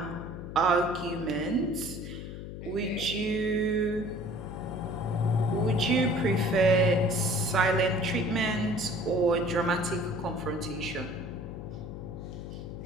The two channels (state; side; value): noise; left; hum, 9 dB below the sound